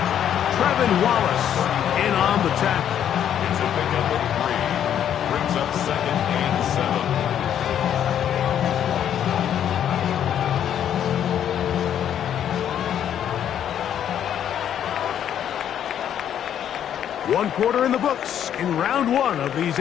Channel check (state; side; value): quieter; right; 9.8 dB